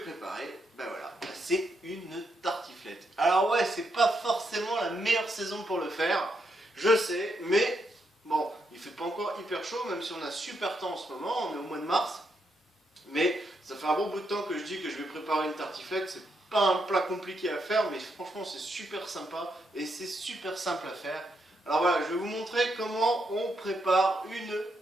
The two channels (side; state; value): both; normal; correlation 0.80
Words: ben voilà, c'est une tartiflette. Alors ouais, c'est pas forcément la meilleure saison pour le faire, je sais, mais bon, il fait pas encore hyper chaud, même si on a super temps en ce moment, on est au mois de mars. Mais ça fait un bon bout de temps que je dis que je vais préparer une tartiflette, c'est pas un plat compliqué à faire, mais franchement c'est super sympa et c'est super simple à faire. Alors voilà, je vais vous montrer comment on prépare une